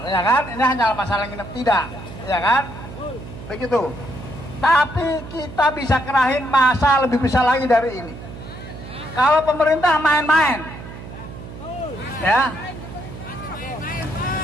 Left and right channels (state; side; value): noise; right; hum, 13 dB below the sound